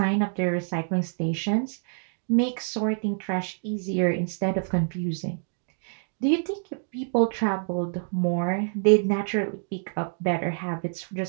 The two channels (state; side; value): silent; left; digital silence